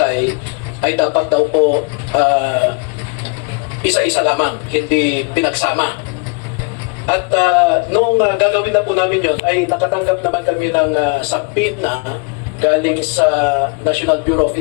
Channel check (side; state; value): right; quieter; 35.5 dB